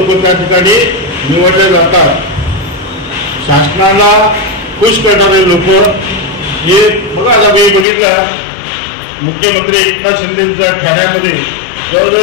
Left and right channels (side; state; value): right; drops out; at 7.9 s